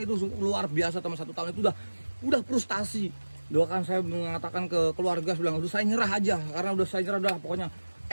itu luar biasa teman. 1 tahun itu udah frustasi. Doakan saya mengatakan ke keluarga, bilang udah saya nyerah aja, karena udah saya nyerah, udah pokoknya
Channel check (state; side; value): inverted; both; correlation -1.00